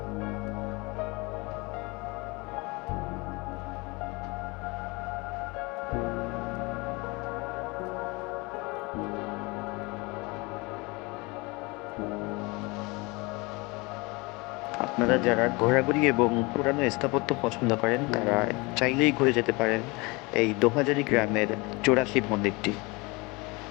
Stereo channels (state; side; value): quieter; right; 25.8 dB